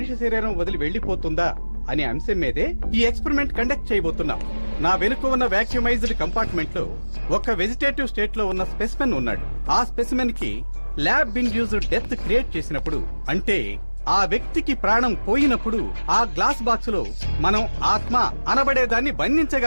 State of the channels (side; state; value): both; inverted; correlation -1.00